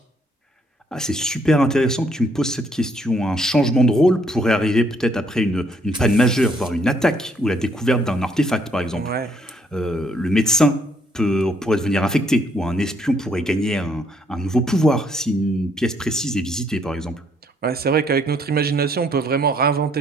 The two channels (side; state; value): both; normal; correlation 0.68